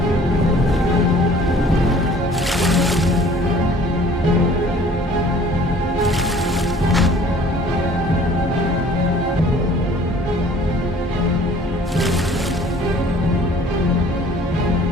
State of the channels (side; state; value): both; normal; correlation 0.53